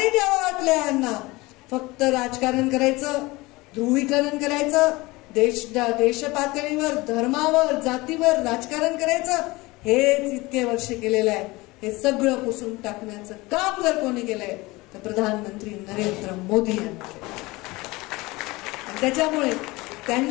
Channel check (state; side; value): quieter; right; 22.0 dB